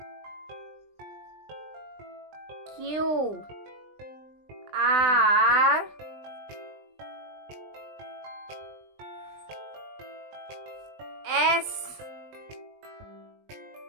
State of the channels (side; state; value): left; late; 20 ms